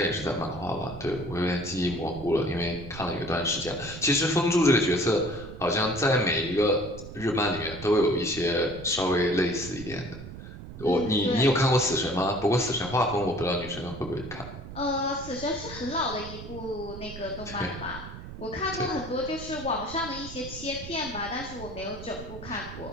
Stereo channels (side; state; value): right; noise; rumble, 12 dB below the sound